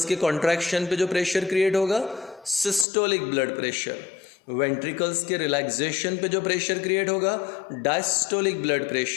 के कॉन्ट्रैक्शन पे जो प्रेशर क्रिएट होगा सिस्टोलिक ब्लड प्रेशर, वेंट्रिकल्स के रिलैक्सेशन पे जो प्रेशर क्रिएट होगा diastolic blood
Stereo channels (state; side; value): drops out; right; at 2.9 s